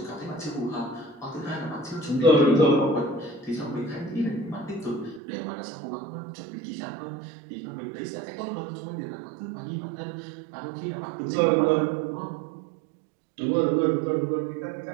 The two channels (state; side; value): drops out; left; at 5.2 s